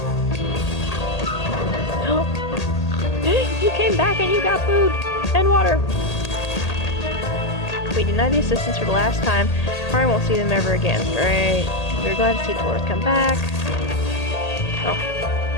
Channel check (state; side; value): late; right; 1.8 ms